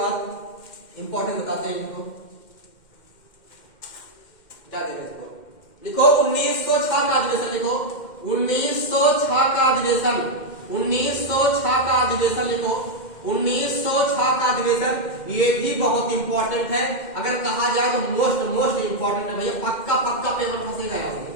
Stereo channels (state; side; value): late; right; 2.1 ms